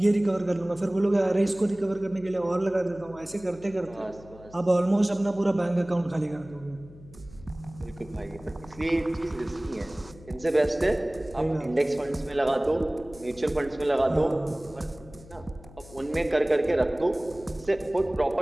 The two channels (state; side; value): noise; left; hum, 20 dB below the sound